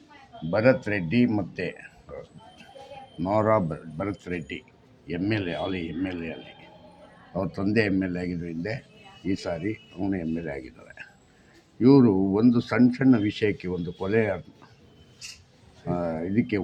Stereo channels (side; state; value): both; identical; correlation 1.00